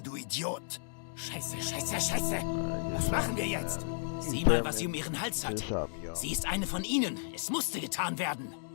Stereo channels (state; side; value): silent; right; digital silence